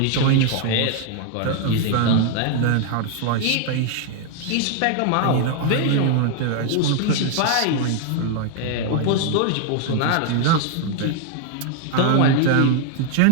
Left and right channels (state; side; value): different; both; correlation 0.00